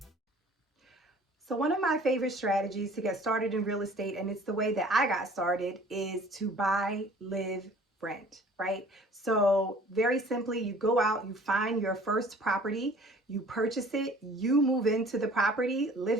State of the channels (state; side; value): normal; both; correlation 0.50